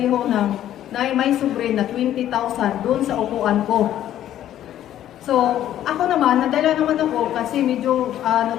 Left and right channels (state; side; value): quieter; right; 11.8 dB